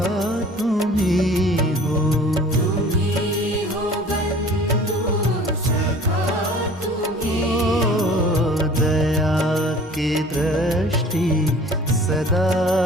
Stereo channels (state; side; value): normal; both; correlation 0.47